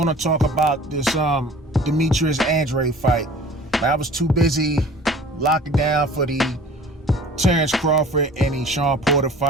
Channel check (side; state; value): both; normal; correlation 0.46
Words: talk about this Demetrius Andrade fight. I was too busy locking down for the Terrence Crawford and the Sean Porter